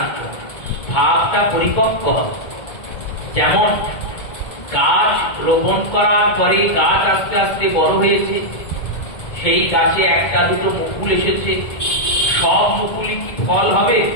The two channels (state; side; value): late; right; 2.2 ms